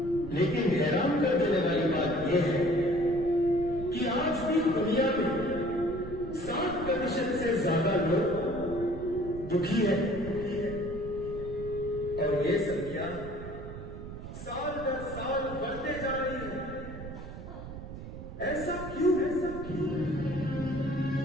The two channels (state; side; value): noise; right; rumble, 11 dB below the sound